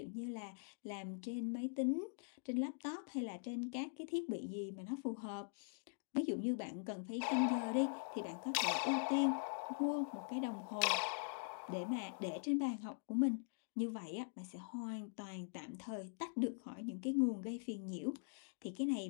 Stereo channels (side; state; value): right; silent; digital silence